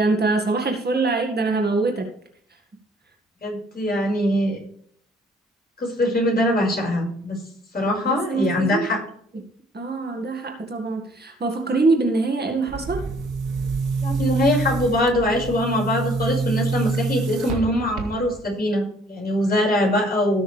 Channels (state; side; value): normal; both; correlation 0.60